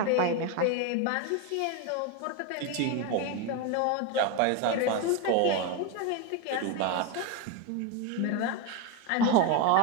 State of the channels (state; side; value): different; both; correlation 0.02